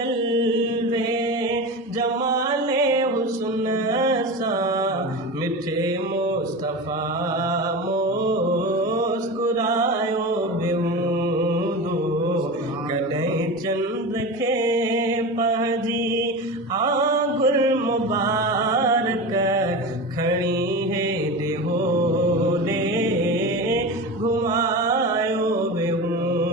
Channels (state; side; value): normal; both; correlation 0.27